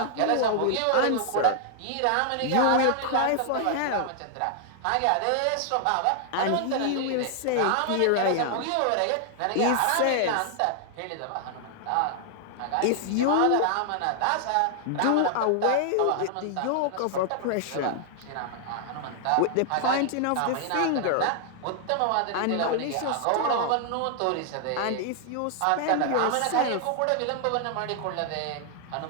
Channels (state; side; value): different; both; correlation 0.00